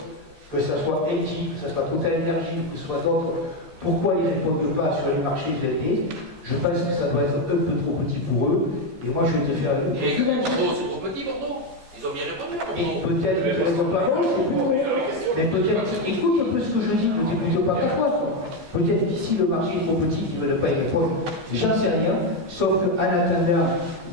que ce soit Engie, que ce soit Total Energy, que ce soit d'autres, pourquoi ils ne répondent pas sur les marchés ELP, Je pense que ça doit être un peu trop petit pour eux. Et moi, je vais te faire une... Et Bordeaux, c'est trop petit, Bordeaux. Ils ont bien répondu à Et Bordeaux. peut-être qu'ils ne répondent pas, mais peut-être, écoute un peu ce que je dis, ne t'écoute pas qu'à toi. Peut-être qu'ici le marché est trop petit, qu'ils ne veulent pas y répondre. J'en sais rien, sauf qu'en attendant,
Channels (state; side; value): late; left; 14 ms